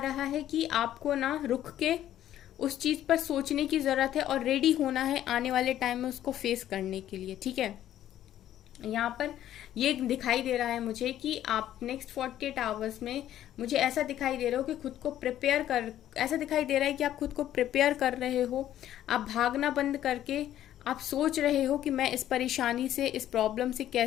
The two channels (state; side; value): quieter; right; 12.0 dB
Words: है कि आपको ना रुक के उस चीज़ पर सोचने की ज़रूरत है और रेडी होना है आने वाले टाइम में उसको फेस करने के लिए, ठीक है। यहाँ पर ये दिखाई दे रहा है मुझे कि आप नेक्स्ट 48 आवर्स में, मुझे ऐसा दिखाई दे रहा हो कि खुद को प्रिपेयर कर, ऐसा दिखाई दे रहा है कि आप खुद को प्रिपेयर कर रहे हो। आप भागना बंद करके आप सोच रहे हो कि मैं इस परेशानी से, इस प्रॉब्लम से